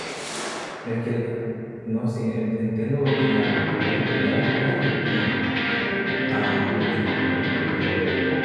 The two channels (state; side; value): identical; both; correlation 1.00